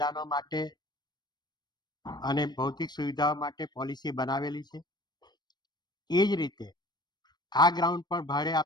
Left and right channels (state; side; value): late; right; 0.20 ms